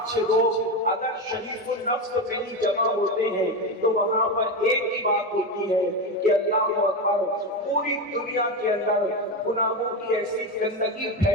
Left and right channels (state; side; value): normal; both; correlation 0.16